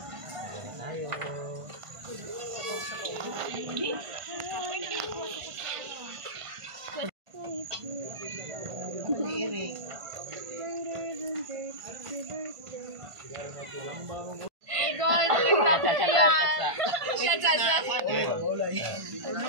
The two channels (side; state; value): left; late; 1.5 ms